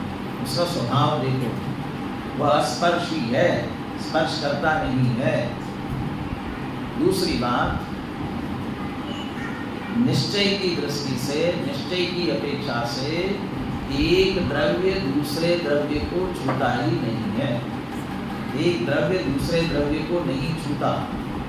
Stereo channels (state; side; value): identical; both; correlation 1.00